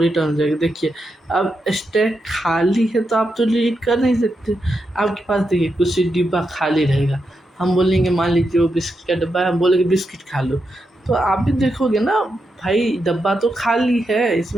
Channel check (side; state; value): both; normal; correlation 0.85